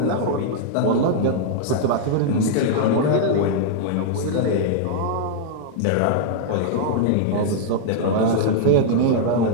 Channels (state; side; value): different; both; correlation -0.01